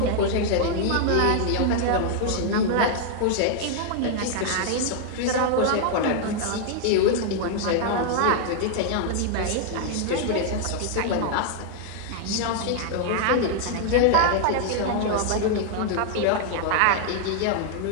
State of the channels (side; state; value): both; different; correlation 0.00